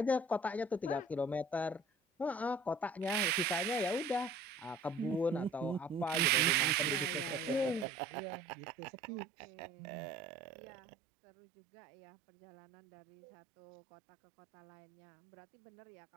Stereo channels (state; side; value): drops out; left; at 7.9 s